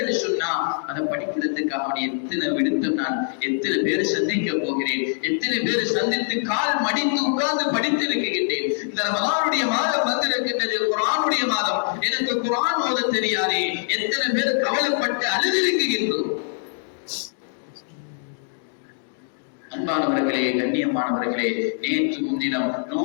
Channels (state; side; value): silent; right; digital silence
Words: என்று சொன்னா, அதை படிக்கிறதுக்காக எத்தனை விடுத்தம் நான் எத்தனை பேரை சந்திக்க போகிறேன், எத்தனை பேரை சந்தித்து கால் மடித்து உட்கார்ந்து படித்திருக்கின்றேன். இந்த ரமலானுடைய மாதம் வந்திருக்கின்றது, குர்ஆனுடைய மாதம், எனக்கு குர்ஆன் ஓத தெரியாதே, எத்தனை பேர் கவலைப்பட்டு அழுதிருக்கின்றோம். அன்பானவர்களே, கண்ணியமானவர்களே, நேற்று முன்தினம்